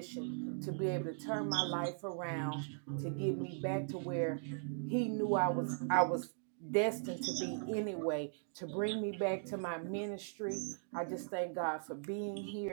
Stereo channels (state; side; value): silent; left; digital silence